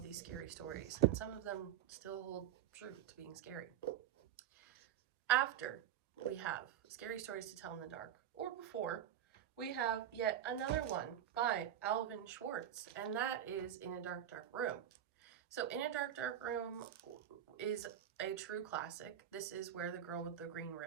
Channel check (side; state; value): left; quieter; 10.7 dB